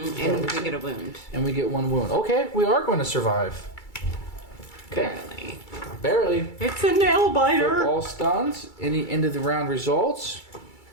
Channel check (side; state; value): right; late; 2.3 ms